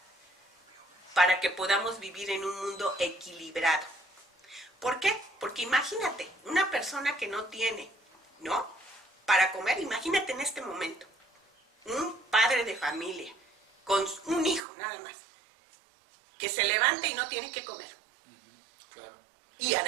para que podamos vivir en un mundo equilibrado. ¿Por qué? Porque imagínate, una persona que no tiene, ¿no?, para comer, imagínate en este momento, un padre de familia, con un hijo nada más, que se levanta y no tiene que comer. Claro. Y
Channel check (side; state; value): left; drops out; at 14.6 s